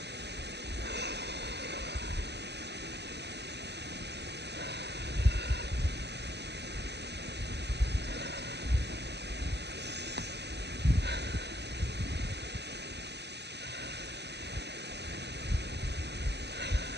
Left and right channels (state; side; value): late; left; 0.49 ms